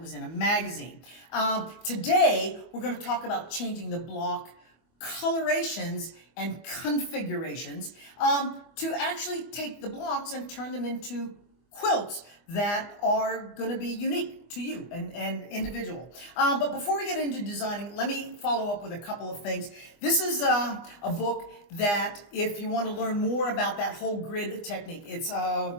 in a magazine. Today, we're going to talk about changing the block colorations and configurations to actually take the blocks and turn them into quilts that are going to be unique to you and individual. But before we get into designing, let me follow up with a couple of things. This is a book that if you want to learn more about that whole grid technique, it's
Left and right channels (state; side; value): late; right; 24 ms